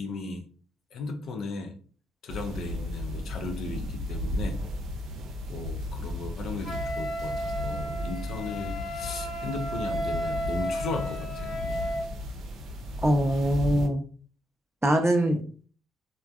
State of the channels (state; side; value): normal; both; correlation 0.80